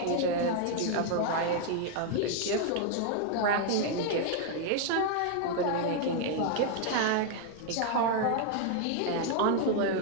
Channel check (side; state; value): both; different; correlation 0.00